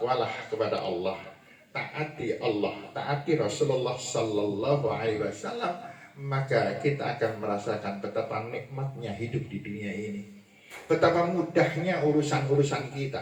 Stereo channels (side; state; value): both; identical; correlation 1.00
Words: kepada Allah, taati Allah, taati Rasulullah Sallallahu Alaihi Wasallam, maka kita akan merasakan betapa nikmatnya hidup di dunia ini, betapa mudahnya urusan-urusan kita,